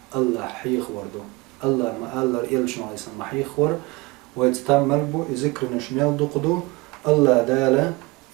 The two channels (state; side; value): quieter; left; 23.9 dB